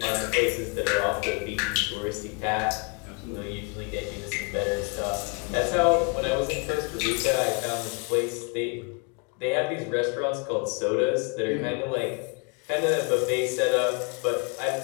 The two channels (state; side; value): quieter; right; 34.7 dB